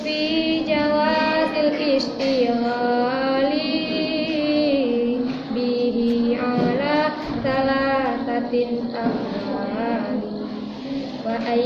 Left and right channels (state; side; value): identical; both; correlation 1.00